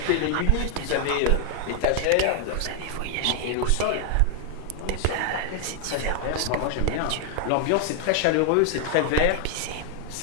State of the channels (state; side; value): different; both; correlation 0.00